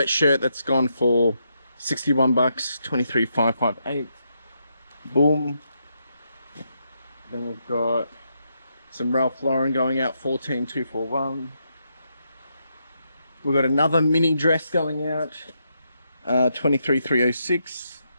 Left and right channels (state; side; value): inverted; both; correlation -0.80